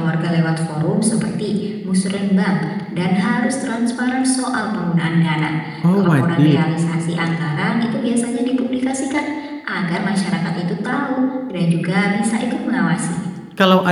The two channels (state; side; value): identical; both; correlation 1.00